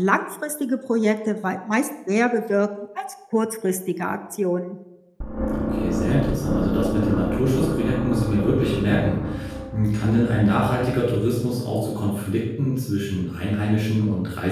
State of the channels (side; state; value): both; identical; correlation 1.00